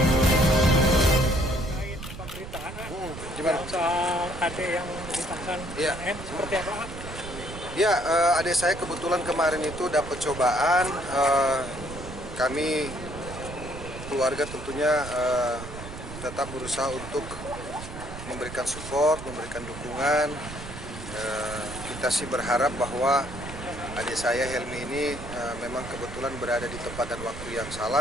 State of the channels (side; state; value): right; noise; rumble, 11 dB below the sound